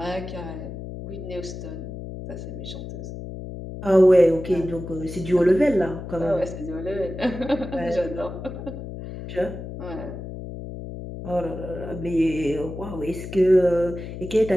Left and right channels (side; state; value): left; noise; hum, 9 dB below the sound